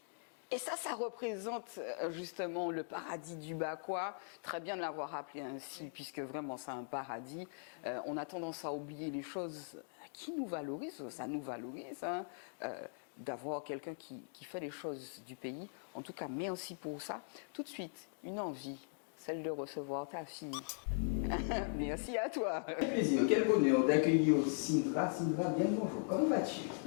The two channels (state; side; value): silent; right; digital silence